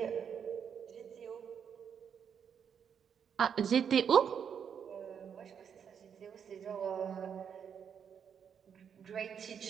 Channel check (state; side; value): quieter; left; 7.6 dB